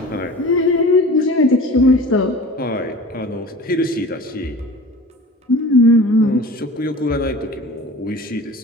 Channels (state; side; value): normal; both; correlation 0.39